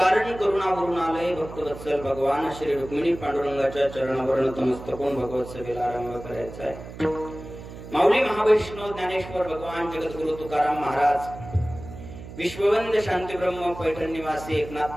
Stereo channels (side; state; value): right; noise; hum, 13 dB below the sound